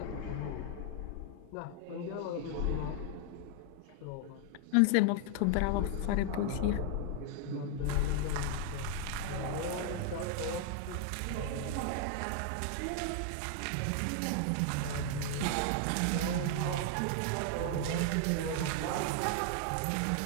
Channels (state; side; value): different; both; correlation 0.00